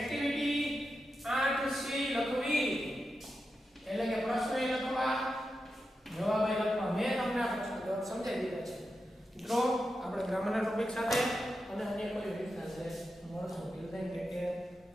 8 સી લખવી એટલે કે પ્રશ્ન એ લખવા જવાબ એ લખવા. મેં તમને આ પ્રશ્ન જવાબ સમજાવી દીધા છે. મિત્રો આપણે ગ્રામરના ટોપિક સાથે અને અન્ય કોઈ રીતના છે મળશું. Till then take care.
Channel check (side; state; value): both; normal; correlation 0.89